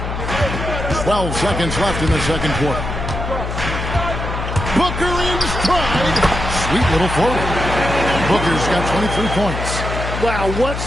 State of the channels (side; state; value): left; noise; hum, 5 dB below the sound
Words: 12 seconds left in the second quarter. Booker in stride. Sweet little floater. Booker's got 23 points. Wow, what